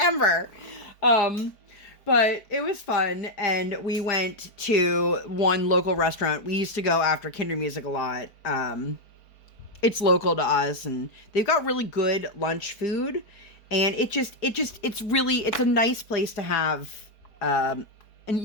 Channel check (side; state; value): right; late; 4.6 ms